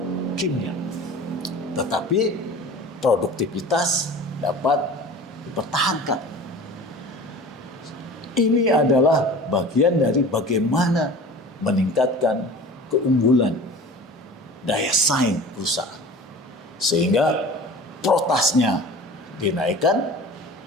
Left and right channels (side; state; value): both; normal; correlation 0.40